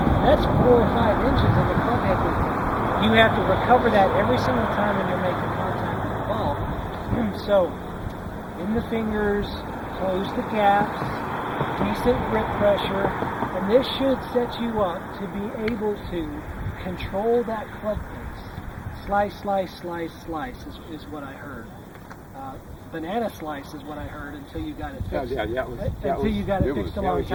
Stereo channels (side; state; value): both; identical; correlation 1.00